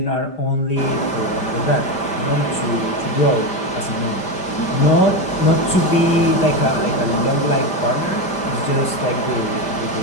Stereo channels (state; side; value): late; right; 5.0 ms